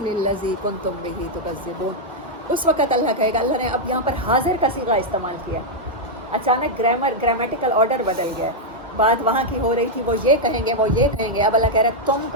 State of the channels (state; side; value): normal; both; correlation -0.02